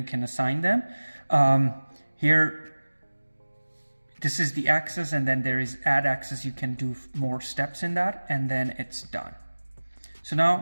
can assign them. Here, this is the access, and then there is add access. You can do more steps in that, and then it's done. So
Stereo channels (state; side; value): inverted; both; correlation -1.00